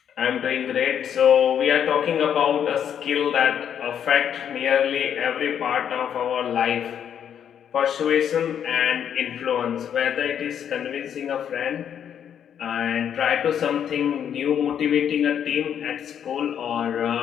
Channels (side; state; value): right; quieter; 8.8 dB